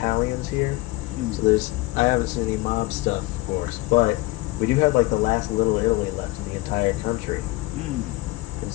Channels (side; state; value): right; quieter; 20.1 dB